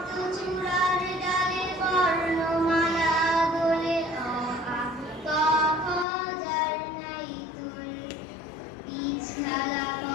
চূড়ার ডালে বর্ণমালা দোলে, অ আ ক খ যার নাই তুল। বীজ ঢালা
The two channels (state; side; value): drops out; right; at 6.1 s